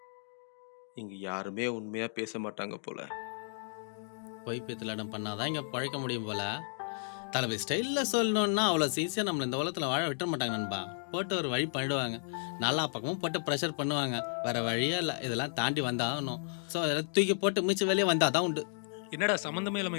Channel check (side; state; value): right; silent; digital silence